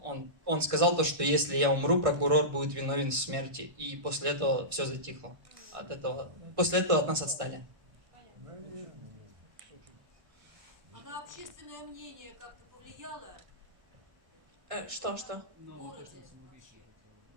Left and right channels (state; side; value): late; left; 1.5 ms